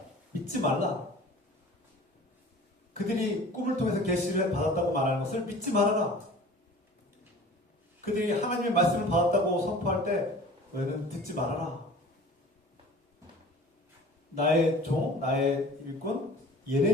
믿지 말라. 그들이 꿈을 통해서 계시를 받았다고 말하는 것을 믿지 말아라. 그들이 하나님의 말씀을 받았다고 선포할 때 너희는 듣지 말아라. 나의 종, 나의 일꾼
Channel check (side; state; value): both; normal; correlation 0.44